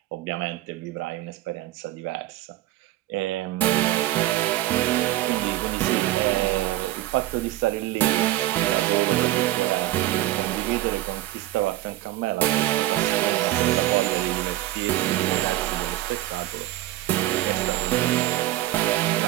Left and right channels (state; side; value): quieter; left; 15.6 dB